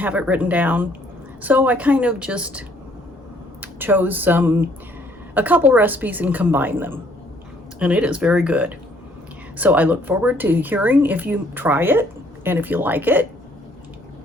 it written down. So I kind of just chose a couple recipes and combined them, and it is very good. So I look forward to hearing if you try it, and if you like it,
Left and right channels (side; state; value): both; normal; correlation 0.63